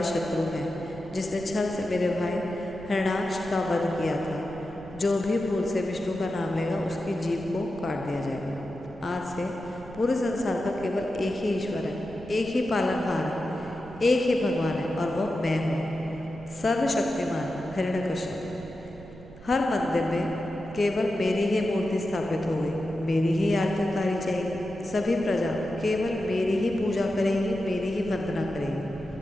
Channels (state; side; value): noise; right; rumble, 18 dB below the sound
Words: शत्रु है, जिसने छल से मेरे भाई हिरण्याक्ष का वध किया था। जो भी भूल से विष्णु का नाम लेगा उसकी जीभ को काट दिया जाएगा। आज से पूरे संसार का केवल एक ही ईश्वर है, एक ही पालनहार है, एक ही भगवान है और वह मैं हूँ, सर्वशक्तिमान हिरण्यकश्यप। हर मंदिर में केवल मेरी ही मूर्ति स्थापित होगी, मेरी ही आरती उतारी जाएगी। सभी प्रजा केवल मेरी ही पूजा करेगी, मेरी ही वंदना